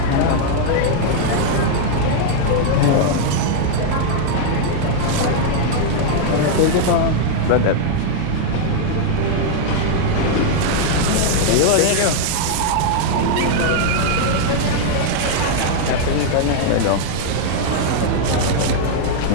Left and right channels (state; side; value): different; both; correlation 0.00